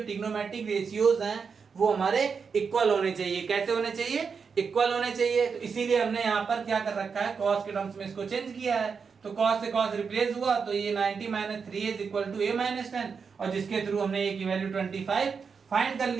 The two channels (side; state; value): left; quieter; 5.7 dB